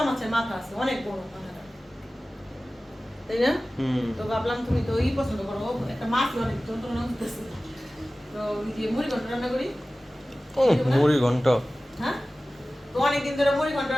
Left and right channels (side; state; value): both; normal; correlation 0.97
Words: মাছের মাথা আছে, অনেক বড় মাথাটা, তাই না? তো ভাবলাম তুমি তো পছন্দ করো, একটা মাছ অনেক যন্ত্রণা হতেছে, তো ওই যে মুড়ি ঘন্ট রান্না করি। মুড়ি ঘন্ট। হ্যাঁ, তো অনেকদিন ধরে মুড়ি ঘন্ট